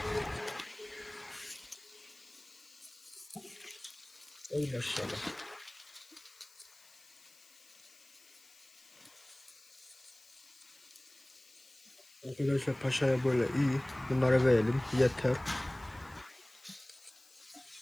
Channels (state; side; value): noise; left; hiss, 25 dB below the sound